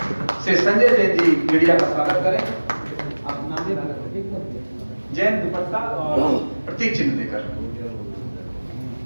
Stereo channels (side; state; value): both; inverted; correlation -1.00